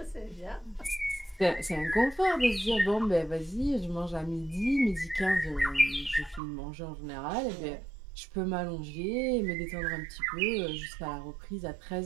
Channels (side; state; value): left; drops out; at 6.4 s